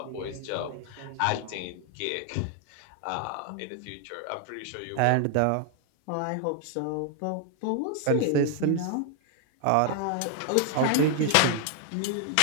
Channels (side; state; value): both; different; correlation 0.00